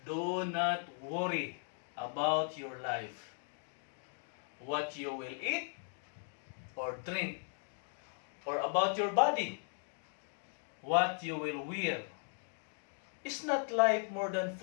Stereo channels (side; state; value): right; silent; 53 dB below the other